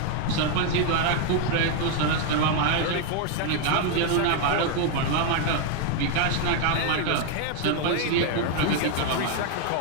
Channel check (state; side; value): different; both; correlation 0.01